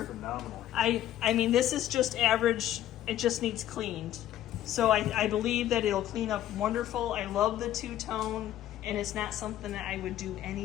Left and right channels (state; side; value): quieter; right; 12.5 dB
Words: Phenomenal. I mean, this is just average. It just needs cleaned. So I believe that it'll clean up wonderful. I love the two-tone, and it's not something that I would do